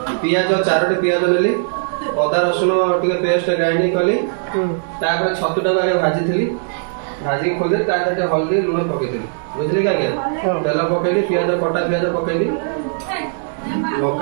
पियाज 4टी पियाज नेली अदा रसुण टे पेस्ट ग्राइंडिंग कली छतुटा आगे भाजी भाजी खोली हल्दी लुण पकई बुझे क्या तेल पकईली पियाज कटा पियाज पकईली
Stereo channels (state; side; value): silent; left; digital silence